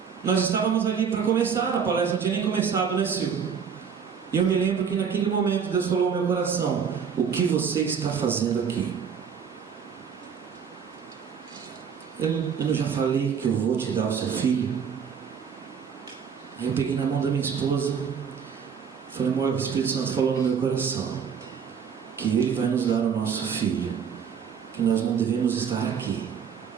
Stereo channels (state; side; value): quieter; left; 6.9 dB